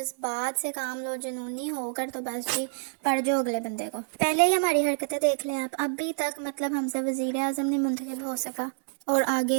سے کام لو، جنونی ہو کر تو بس جی پڑ جو اگلے بندے کو۔ پہلے ہی ہماری حرکتیں دیکھ لیں آپ، ابھی تک مطلب ہم سے وزیر اعظم نہیں منتخب ہو سکا، اور آگے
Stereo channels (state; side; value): silent; left; digital silence